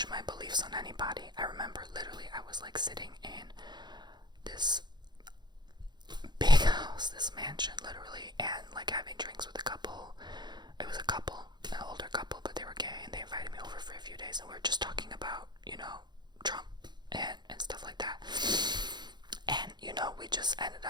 my beliefs on anybody. I remember literally I was like sitting in this big house, this mansion, literally, and like having drinks with a couple. It was a couple, an older couple, but they were gay, and they invited me over for a few days, and we were just talking about, you know, Trump and stuff like that. And, you know, we just ended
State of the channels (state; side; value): late; left; 0.21 ms